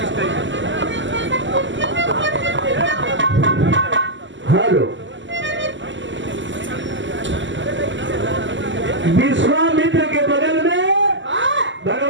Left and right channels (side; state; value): left; late; 0.54 ms